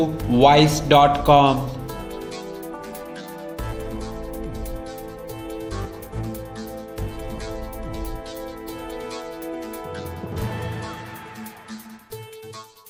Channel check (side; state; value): both; identical; correlation 1.00